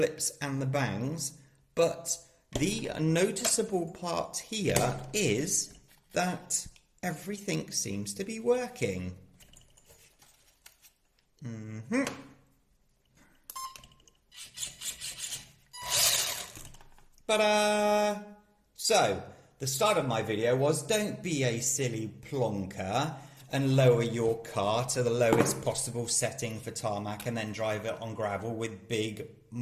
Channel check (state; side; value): identical; both; correlation 1.00